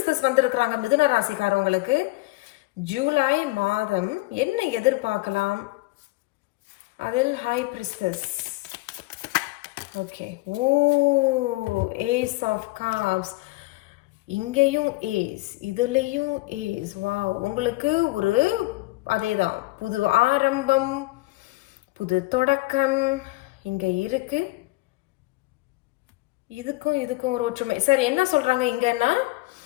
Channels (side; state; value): right; quieter; 22.1 dB